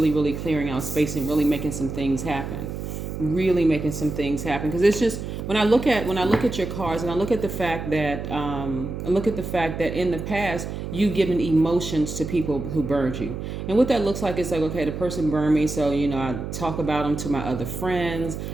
really clearing out space and really making some things happen. really making some things happen. Because it's just, when I look at your cards, and I look at the fact that in the past you've given emotions to people who burned you, and what that looks like is like, okay, the person burned me, so I talk about them to my other friends.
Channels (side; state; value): right; noise; hum, 6 dB below the sound